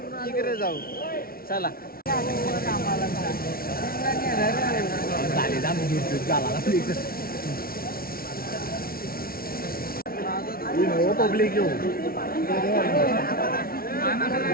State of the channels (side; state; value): right; late; 0.43 ms